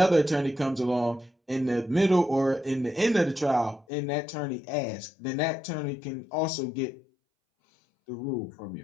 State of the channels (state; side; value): drops out; right; at 3.9 s